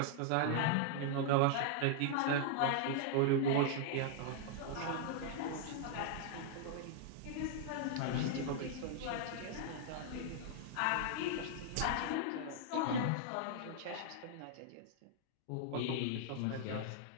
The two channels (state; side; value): different; both; correlation -0.01